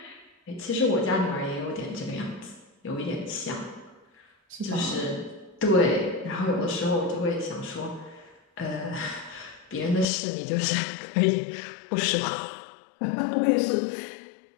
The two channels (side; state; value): right; drops out; at 10.1 s